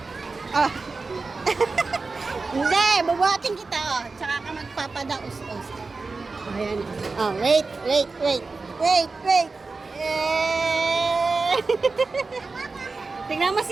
Oh. Hindi, bubuhatin kita. Oh. Tsaka ka magpapadaos-os. Oh, ayan. Oh, wait. Wait. Eh. Tingnan mo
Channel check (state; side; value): quieter; left; 4.0 dB